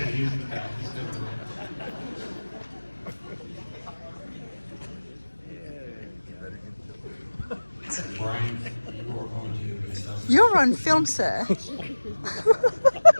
He's in the back. He's doing it. Brian, you are going to induct. You're on film, sir.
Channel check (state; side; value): inverted; both; correlation -1.00